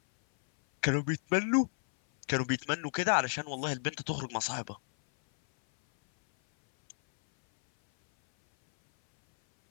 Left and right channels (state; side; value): silent; right; 57 dB below the other